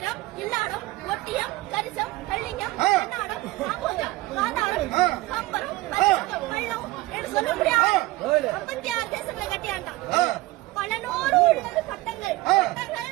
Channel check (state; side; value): quieter; left; 19.4 dB